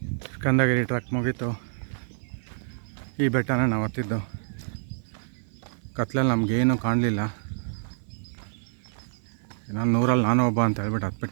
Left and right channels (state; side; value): silent; left; 56 dB below the other